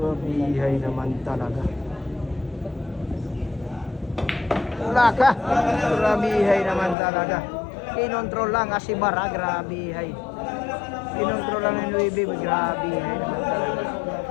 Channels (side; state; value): right; drops out; at 7.0 s